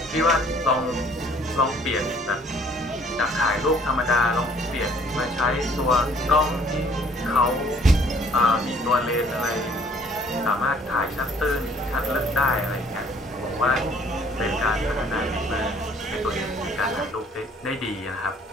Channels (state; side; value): normal; both; correlation 0.59